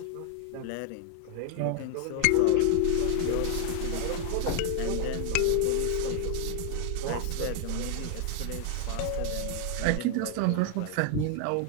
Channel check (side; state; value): both; different; correlation 0.00